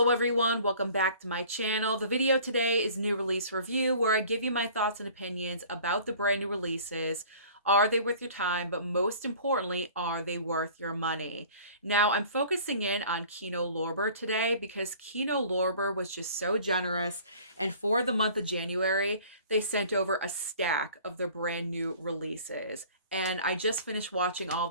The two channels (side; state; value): both; inverted; correlation -0.48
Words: everyone, welcome back to my channel. The video today is new release review where I give you my thoughts and opinions about the brand new releases. Are they worth your time? But most importantly, are they worth your money? Now, I'm focusing in on Kino Lorber today because Kino Lorber was just so generous, and for the month of January, they sent over a stack of their brand new releases. And I just finished watching all